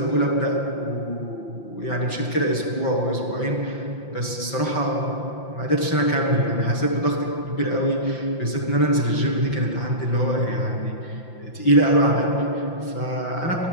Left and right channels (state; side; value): late; right; 5.8 ms